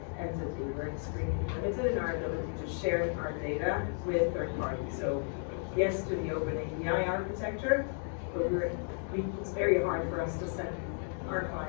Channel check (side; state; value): right; silent; 55 dB below the other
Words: entity, we're extremely limited in our ability to share our data with third parties. So yes to the open API architecture, but it's very hard for us to send our